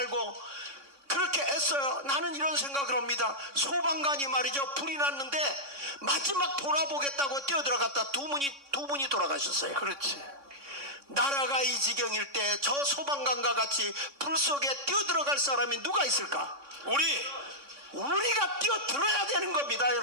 그렇게 애써요. 나는 이런 생각을 합니다. 소방관이 말이죠. 불이 났는데 마지막 돌아보겠다고 뛰어들어갔다 두 분이 돌아가셨어요. 그렇지. 나라가 이 지경일 때 저 소방관과 같이 불 속에 뛰어들어갈 사람이 누가 있을까? 우리가 뛰어들어야 되는 겁니다,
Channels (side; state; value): left; late; 3.6 ms